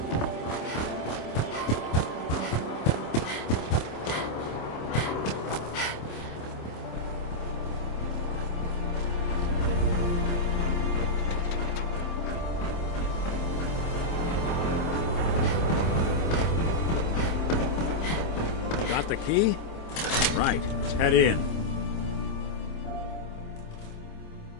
Got the key? Right, let's head in.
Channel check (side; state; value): right; late; 26 ms